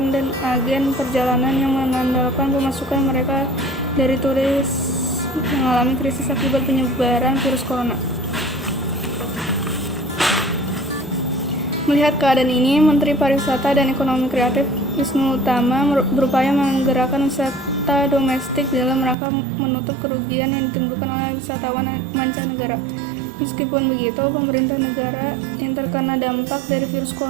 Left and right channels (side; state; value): left; drops out; at 19.2 s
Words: dan agen perjalanan yang mengandalkan pemasukan mereka dari turis mengalami krisis akibat penyebaran virus corona. Melihat keadaan ini, Menteri Pariwisata dan Ekonomi Kreatif Wisnu Tama berupaya menggerakkan wisata domestik dalam rangka menutup kerugian yang ditimbulkan oleh wisatawan mancanegara. Meskipun begitu, pemerintah negara yang terkena dampak dari virus